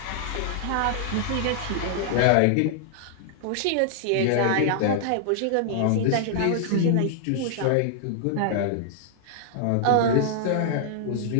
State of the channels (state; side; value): different; both; correlation -0.01